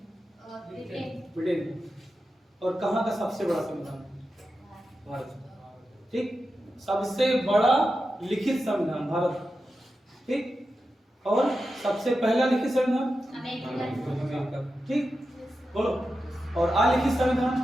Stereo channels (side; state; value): both; normal; correlation 0.90